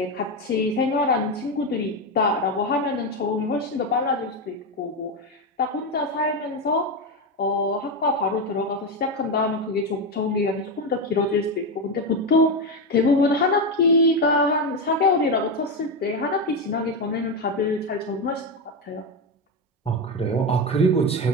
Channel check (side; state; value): both; normal; correlation 0.11